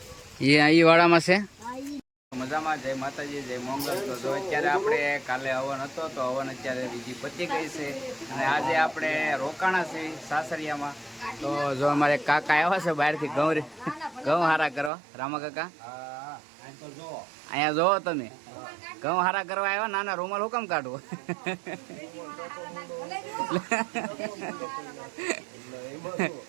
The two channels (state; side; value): drops out; left; at 14.9 s